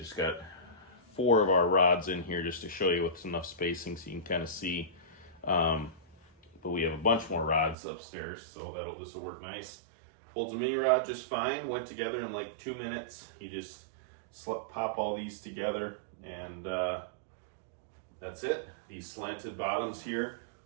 got 4 of our rods in here just to show you with enough spacing so you can kind of see. But we have a bunch more rods upstairs, so this will work nice. Holds a mini rod just fine. Went together in like 2 minutes. You just pop all these together, and that's it. These slanted bottoms here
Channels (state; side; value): drops out; left; at 7.8 s